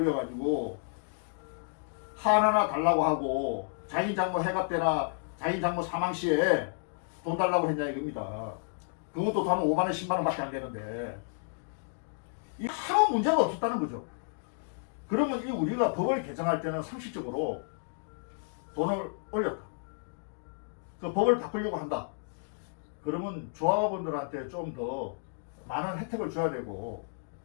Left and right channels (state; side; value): silent; right; digital silence